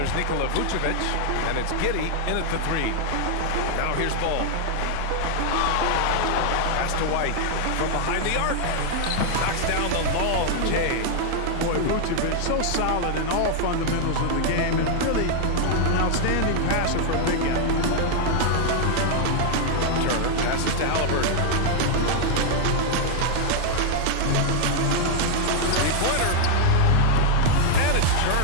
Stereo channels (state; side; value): different; both; correlation 0.00